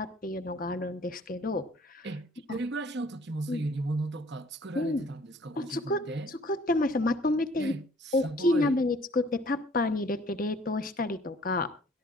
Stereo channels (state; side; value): normal; both; correlation 0.56